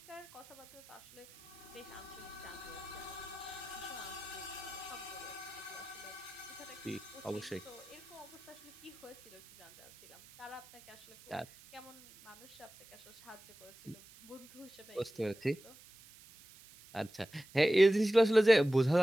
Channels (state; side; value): noise; right; hiss, 21 dB below the sound